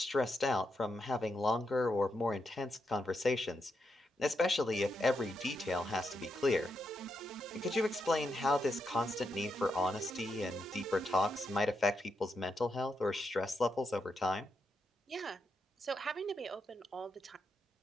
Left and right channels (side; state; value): both; normal; correlation 0.83